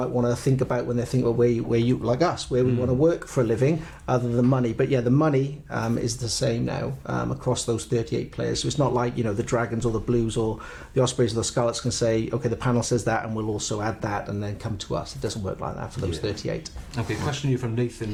want to think about when they think about where you, like us, where we want to work for a living, other than money. But yeah, the money is the same now across those 38 players. So it's not like, the Dragons or the Blues or the Ospreys or the Scarlets can say, okay, the panel says that and we'll also add that and then come to us. It doesn't work like that for those 38. Okay, question here from Nathan,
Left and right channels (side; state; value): both; identical; correlation 1.00